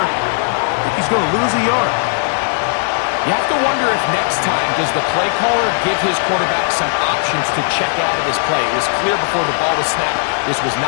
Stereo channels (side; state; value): right; silent; digital silence